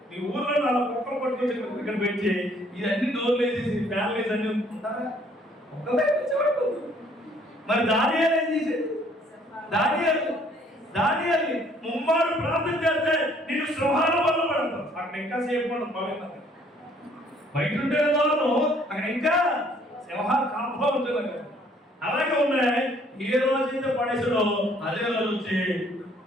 మీ ఊర్లో అలా కుక్కలు పట్టుకొచ్చి ఇక్కడ పెట్టి ఇవన్నీ డోర్లు వేసేసి ఫ్యాన్లు వేసి అన్ని ఉంటారా? మరి దానియాలు ఏం చేసేది? దానియాలు ముమ్మారు ప్రార్థన చేస్తే నిన్ను సింహాల వల్ల పడతావు. అక్కడ ఇంకా సేపు ఉండదు. బయట ఉంటే అక్కడ ఇంకా సింహాలు కాపుగా ఉంటుంది. అలాగే ఉన్నాయి. ఏ రోజైతే పడేసాడో అదే రోజు వచ్చి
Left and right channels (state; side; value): normal; both; correlation 0.61